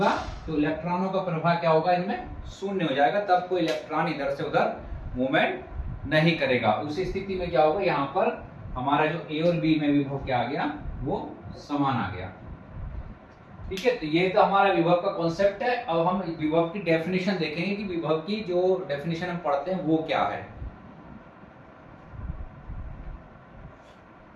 तो इलेक्ट्रॉनों का प्रवाह क्या होगा, इनमें शून्य हो जाएगा। तब कोई इलेक्ट्रॉन इधर से उधर मूवमेंट नहीं करेगा। उस स्थिति में क्या होगा, यहाँ पर हमारा जो ए और बी में विभव क्या आ गया, वो समान आ गया। ठीक है, तो ये तो हमारा विभव का कॉन्सेप्ट है। अब हम विभव की डेफिनेशन देखेंगे कि विभव की जो डेफिनेशन हम पढ़ते हैं वो क्या है।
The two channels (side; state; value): both; identical; correlation 1.00